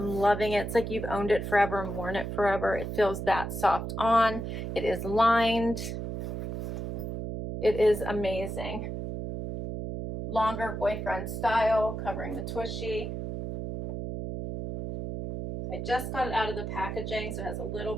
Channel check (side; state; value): right; noise; hum, 5 dB below the sound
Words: loving it. It's like you've owned it forever and worn it forever. It feels that soft on. It is lined. It is amazing. Longer boyfriend style, covering the tushy. I just got it out of the packaging, so it has a little